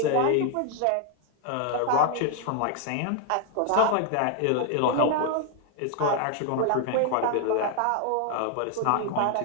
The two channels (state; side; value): different; both; correlation 0.01